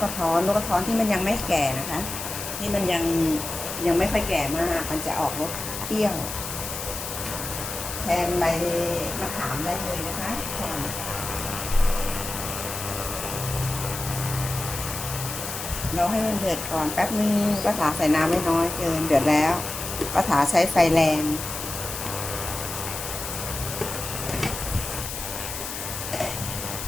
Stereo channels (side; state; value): left; noise; hiss, 7 dB below the sound